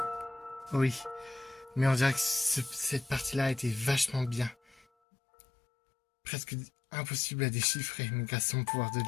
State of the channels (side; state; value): right; drops out; at 4.9 s